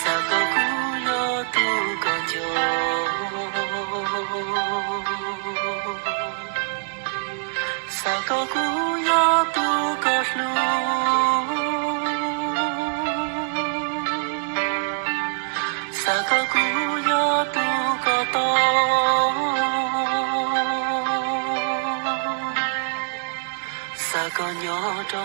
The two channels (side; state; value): left; silent; digital silence